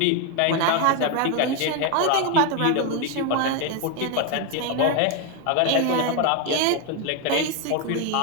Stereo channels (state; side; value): different; both; correlation 0.01